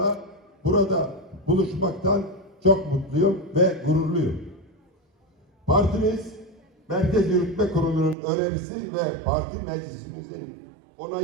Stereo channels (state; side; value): drops out; left; at 8.2 s